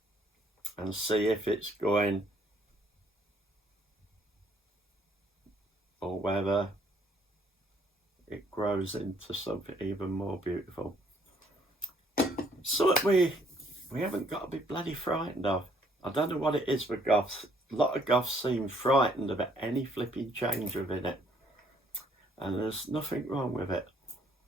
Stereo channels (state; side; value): normal; both; correlation 0.64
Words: and see if it's going or whether it grows into something even more beautiful. So we haven't got to be bloody frightened of. I don't know what it is with goths. A lot of goths seem frightened about any flipping change within it. And there's nothing wrong with it.